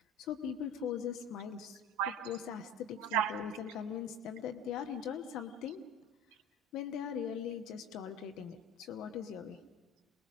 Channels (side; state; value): both; normal; correlation 0.34